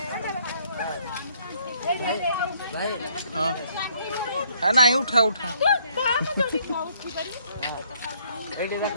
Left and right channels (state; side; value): inverted; both; correlation -0.65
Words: ହଁ ନାଇଁ ଉଠା ଉଠା।